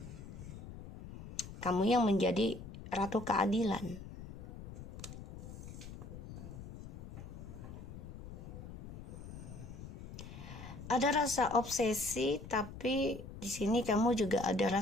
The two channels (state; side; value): noise; left; rumble, 12 dB below the sound